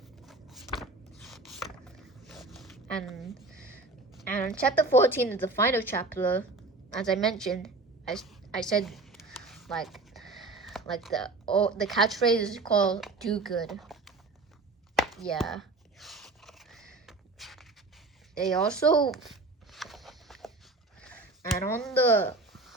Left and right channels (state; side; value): quieter; left; 3.3 dB